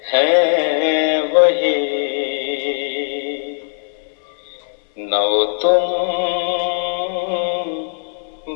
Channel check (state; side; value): silent; right; 62 dB below the other